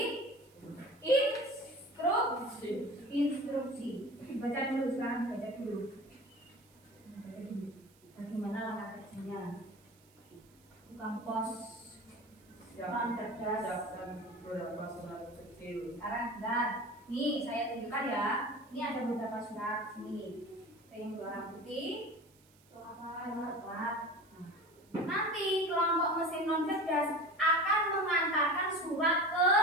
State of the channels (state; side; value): noise; right; hiss, 30 dB below the sound